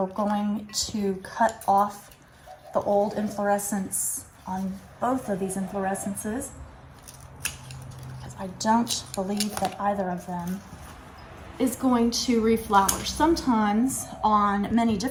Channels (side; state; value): both; identical; correlation 1.00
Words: going to cut off the old inflorescence on both of these inflorescences because I don't believe that either of them is going to reflower. Sometimes on many